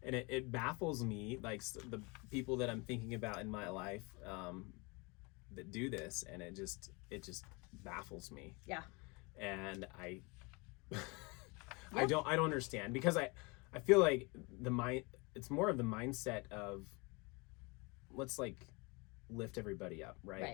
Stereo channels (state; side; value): quieter; right; 28.2 dB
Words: it baffles me, like the people that I'm thinking about in my life that do this, and it just baffles me. Yeah. And I don't understand, because I feel like it's more of the mindset of, let's like lift everybody up, right?